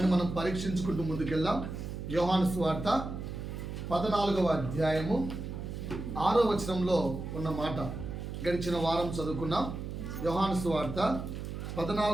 మనం పరీక్షించుకుంటూ ముందుకెళ్దాం. యోహాను సువార్త 14వ అధ్యాయము 6వ వచనంలో ఉన్న మాట గడిచిన వారం చదువుకున్నాం. యోహాను సువార్త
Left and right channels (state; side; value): noise; right; hum, 7 dB below the sound